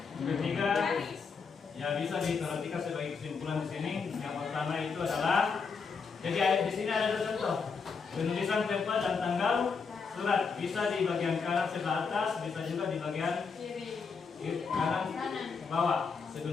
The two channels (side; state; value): right; quieter; 5.3 dB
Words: Ketiga, ya bisa diperhatikan sebagai kesimpulan di sini. Yang pertama itu adalah, jadi di sini ada contoh penulisan tempat dan tanggal surat, bisa di bagian kanan sebelah atas, bisa juga di bagian kanan bawah